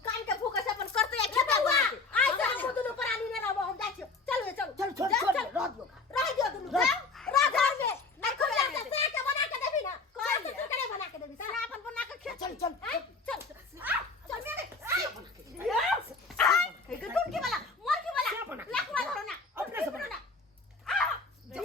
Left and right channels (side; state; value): right; quieter; 4.0 dB